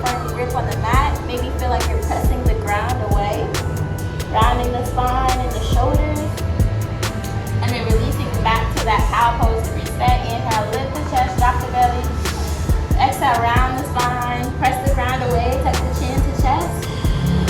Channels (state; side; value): identical; both; correlation 1.00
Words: firm grip on the mat. Maybe feel like you're pressing the ground away. Rounding the spine and the shoulders. And then releasing back to that cow pose to reset. Inhale, lift the chest, drop the belly. Exhale, round the spine, press the ground away, tuck the chin to chest.